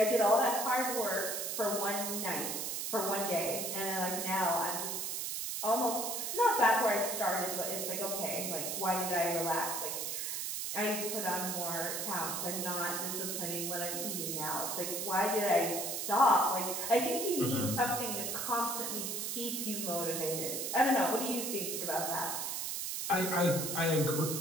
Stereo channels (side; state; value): right; noise; hiss, 2 dB below the sound